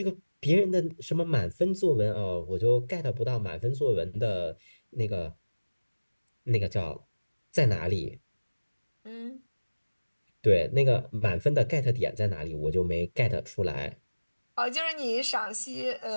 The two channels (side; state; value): both; inverted; correlation -1.00